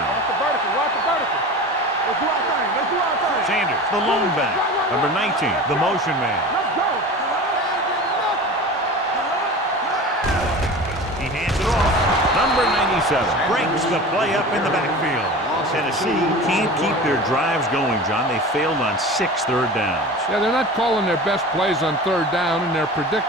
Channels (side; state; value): both; normal; correlation 0.35